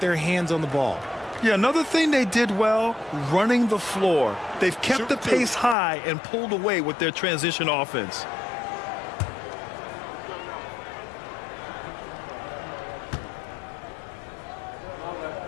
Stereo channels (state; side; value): drops out; right; at 5.8 s